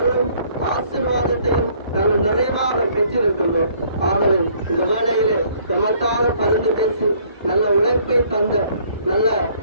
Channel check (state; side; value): inverted; both; correlation -0.61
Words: ஆசீர்வாதத்தையும் நாங்கள் நிறைவாக பெற்றிருக்கின்றோம். ஆகவே இந்த வேளையிலே நமக்காக பரிந்து பேசி நல்ல உழைப்பை தந்த நல்ல